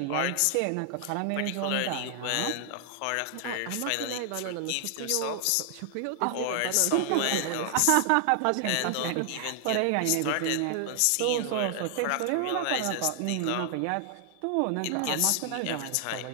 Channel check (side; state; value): both; different; correlation 0.00